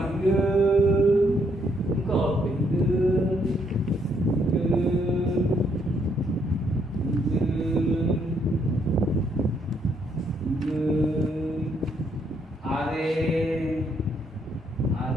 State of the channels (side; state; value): both; normal; correlation 0.72